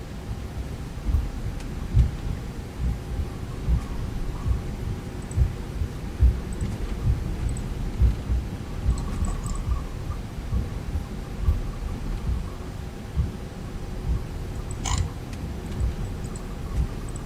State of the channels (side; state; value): both; identical; correlation 1.00